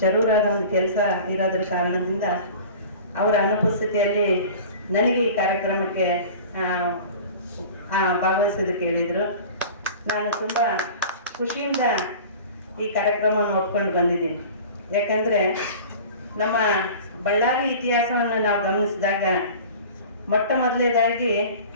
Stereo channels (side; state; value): both; inverted; correlation -0.39